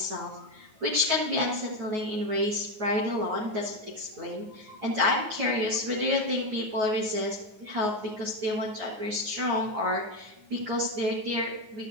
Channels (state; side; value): late; left; 9.5 ms